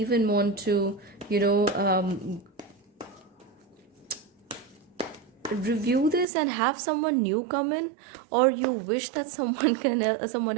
want to, review this and have someone new come in, or you wish that someone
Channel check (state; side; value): drops out; left; at 6.2 s